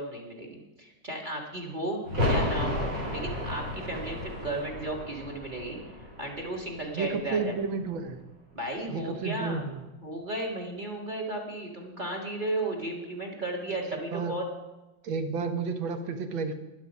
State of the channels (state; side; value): normal; both; correlation -0.07